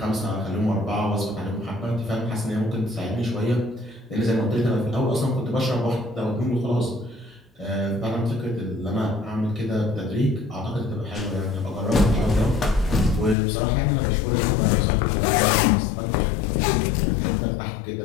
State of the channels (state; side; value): drops out; right; at 13.4 s